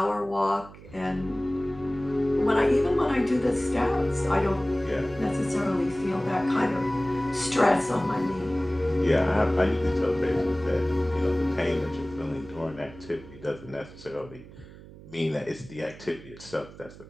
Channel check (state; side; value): noise; right; hum, 18 dB below the sound